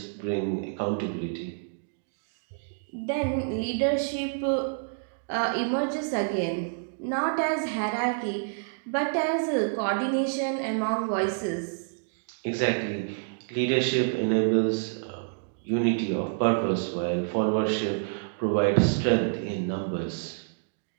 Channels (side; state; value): left; silent; digital silence